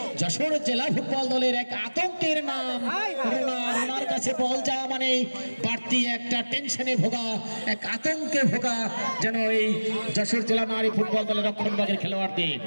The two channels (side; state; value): both; inverted; correlation -1.00